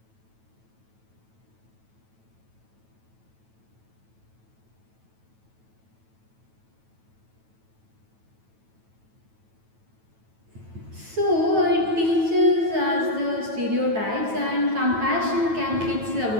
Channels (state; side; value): late; left; 9.1 ms